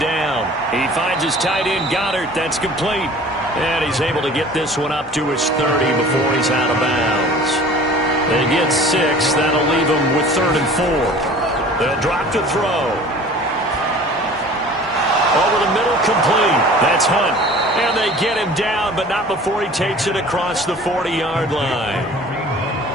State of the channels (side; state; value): both; normal; correlation 0.45